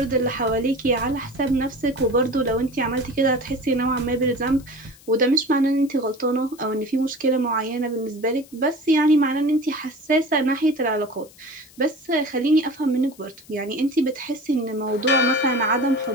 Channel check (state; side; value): noise; left; hiss, 24 dB below the sound